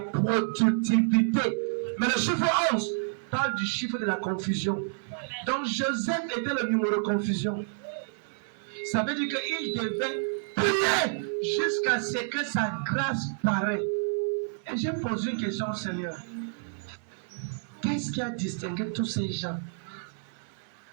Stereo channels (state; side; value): silent; left; digital silence